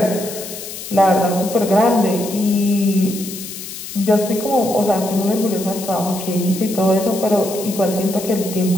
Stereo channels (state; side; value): noise; left; hiss, 10 dB below the sound